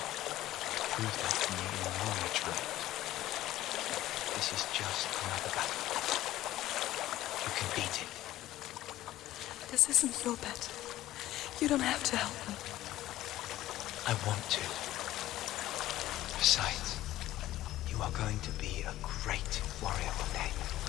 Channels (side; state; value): right; quieter; 14.9 dB